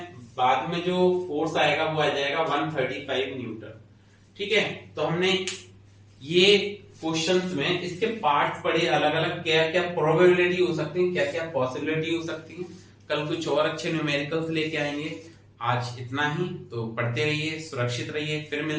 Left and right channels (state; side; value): identical; both; correlation 1.00